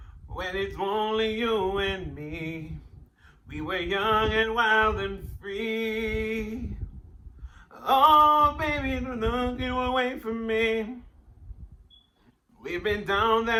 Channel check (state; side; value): identical; both; correlation 1.00